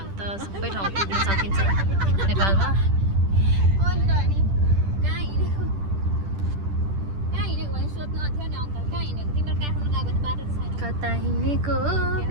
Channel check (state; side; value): late; left; 10 ms